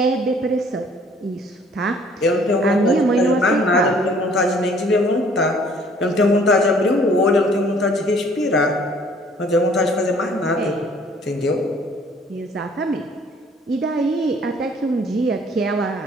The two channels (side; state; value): both; normal; correlation 0.57